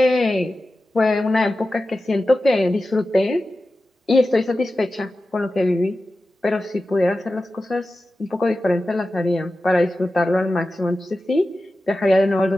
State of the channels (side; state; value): both; normal; correlation 0.94